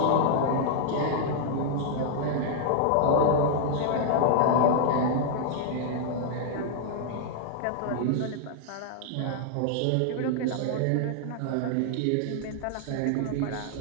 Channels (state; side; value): different; both; correlation 0.00